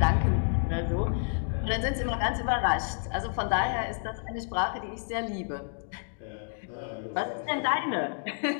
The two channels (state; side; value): silent; right; digital silence